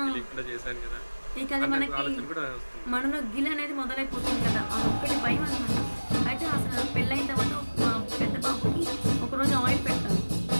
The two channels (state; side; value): inverted; both; correlation -1.00